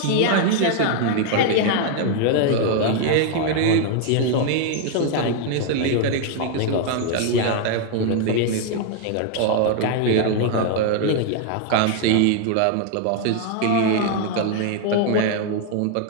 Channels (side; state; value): both; different; correlation 0.00